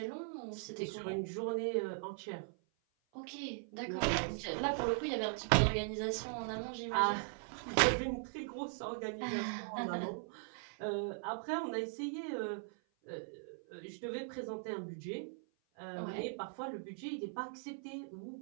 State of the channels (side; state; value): left; silent; 51 dB below the other